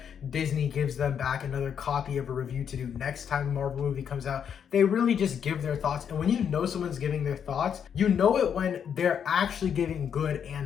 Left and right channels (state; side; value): quieter; right; 7.9 dB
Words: Disney gives them back another copy of a review to do next time a Marvel movie comes out. They really just give their thoughts, and when you know someone's giving their thoughts, you know it when they're actually giving good